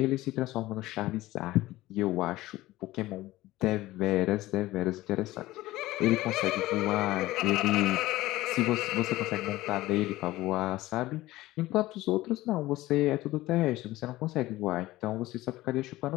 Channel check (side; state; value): right; quieter; 17.4 dB